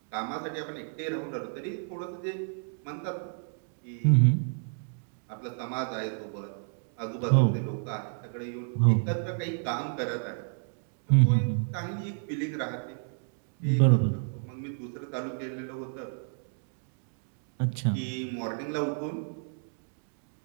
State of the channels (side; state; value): left; silent; digital silence